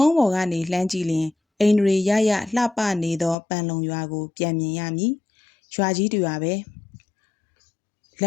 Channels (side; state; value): right; drops out; at 3.4 s